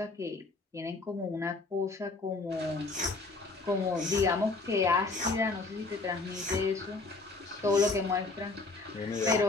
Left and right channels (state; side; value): quieter; right; 3.6 dB